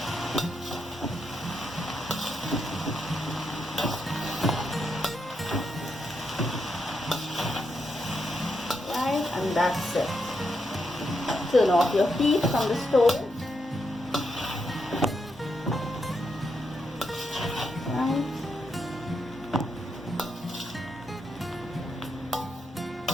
Right, and that's it. Turn off your heat from the stove. Right.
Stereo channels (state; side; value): normal; both; correlation 0.82